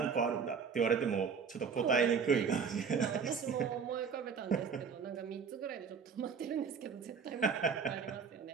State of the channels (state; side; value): quieter; left; 6.1 dB